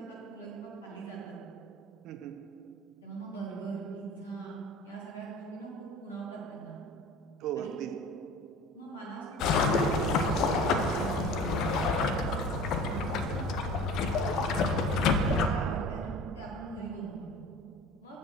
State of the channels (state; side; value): normal; both; correlation 0.41